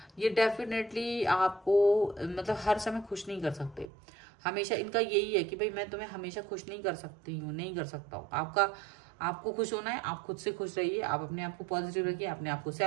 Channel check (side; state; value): left; drops out; at 3.9 s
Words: ये डेफिनेटली आपको मतलब हर समय खुश नहीं कर सकते। हमेशा इनका यही है कि भाई मैं तुम्हें हमेशा खुश नहीं कर सकती हूँ, नहीं कर सकता हूँ। आपको खुश होना है, आप खुद से खुश रहिए, आप अपने आप को पॉजिटिव रखिए, अपने आप को